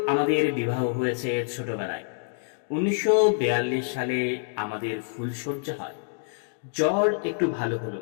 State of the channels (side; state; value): right; silent; digital silence